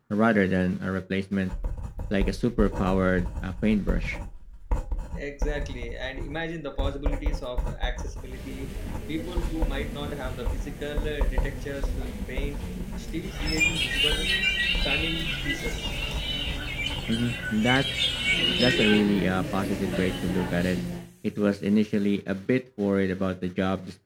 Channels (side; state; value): both; identical; correlation 1.00